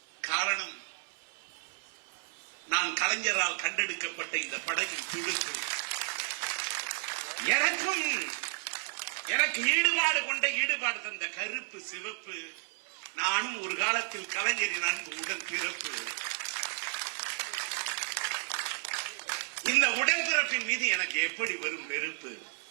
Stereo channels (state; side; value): silent; left; 56 dB below the other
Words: காரணம், நான் கலைஞரால் கண்டெடுக்கப்பட்ட இந்த படகின் துடுப்பு. எனக்கு ஈடுபாடு கொண்ட ஈடுபாடு தந்த கருப்பு சிவப்பு. நானும் ஒரு காலத்தில் கலைஞரின் அன்பு உடன் பிறப்பு. இந்த உடன்பிறப்பின் மீது எனக்கு எப்படி வரும் வெறுப்பு?